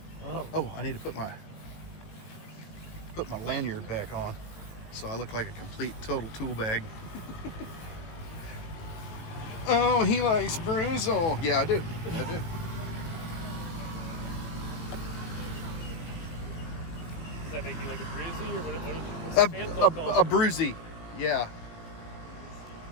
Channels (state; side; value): late; right; 18 ms